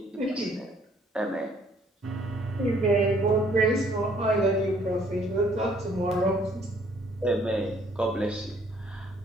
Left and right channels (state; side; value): normal; both; correlation 0.62